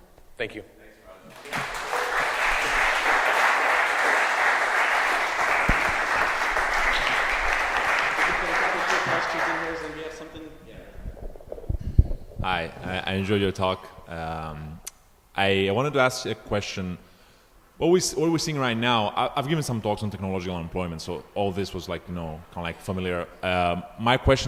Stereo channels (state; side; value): identical; both; correlation 1.00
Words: Thank you. Hi, I enjoyed your talk. I wanted to ask you a question. What we're seeing right now, I've given some talks on technological unemployment, so all this was like, kind of like familiar. My